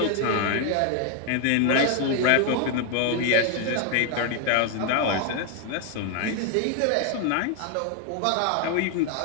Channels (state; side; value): different; both; correlation 0.00